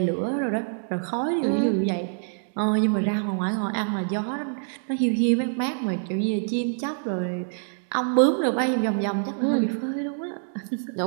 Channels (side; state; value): left; silent; digital silence